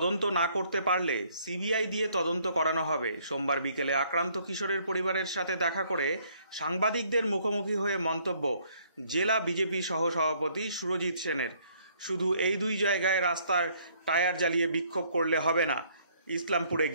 না করতে পারলে সিবিআই দিয়ে তদন্ত করানো হবে। সোমবার বিকেলে আক্রান্ত কিশোরের পরিবারের সাথে দেখা করে সাংবাদিকদের মুখোমুখি হয়ে মন্তব্য জেলা বিজেপি সহসভাপতি সুরজিৎ সেনের। শুধু এই দুই জায়গায় রাস্তার টায়ার জ্বালিয়ে বিক্ষোভ করলে হবে না, ইসলামপুরে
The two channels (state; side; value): inverted; both; correlation -0.64